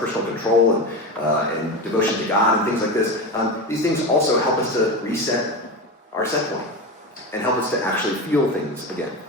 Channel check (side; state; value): both; normal; correlation 0.22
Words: control and devotion to God and things like this. These things also help us to reset our set point and help us to actually feel things again.